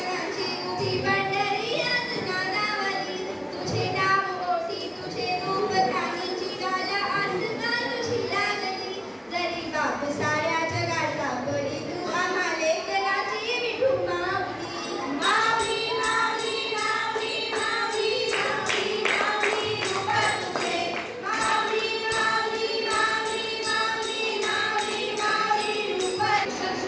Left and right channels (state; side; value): identical; both; correlation 1.00